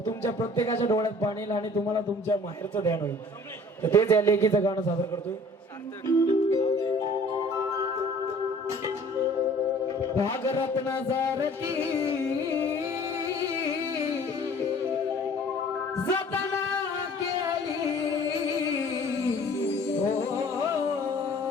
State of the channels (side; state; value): both; normal; correlation 0.50